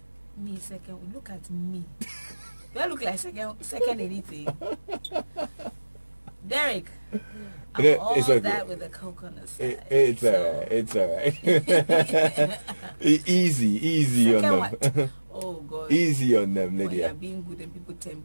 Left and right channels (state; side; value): inverted; both; correlation -1.00